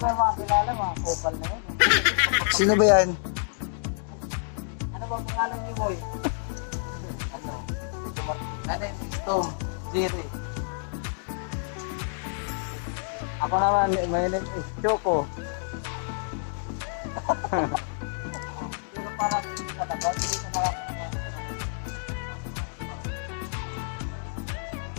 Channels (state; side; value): silent; right; digital silence